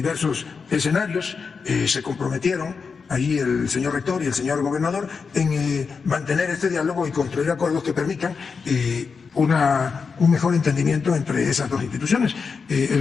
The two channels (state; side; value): quieter; right; 5.3 dB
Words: escenarios, se comprometieron ahí el señor rector y el señor gobernador en mantener este diálogo y construir acuerdos que permitan un mejor entendimiento entre esas dos instituciones.